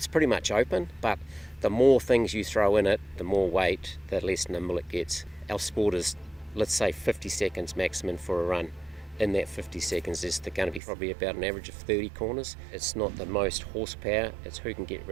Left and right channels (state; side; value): drops out; left; at 10.8 s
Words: pretty much open, but the more things you throw in it, the more weight, the less nimble it gets. Our sport is, let's say, 50 seconds maximum for a run. In that 50 seconds, there's going to be probably about an average of 30 corners. It's not the most horsepower, it's who can get